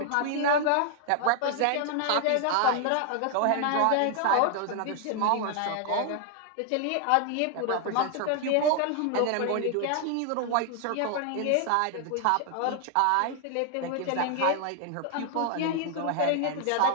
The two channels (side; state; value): both; different; correlation 0.00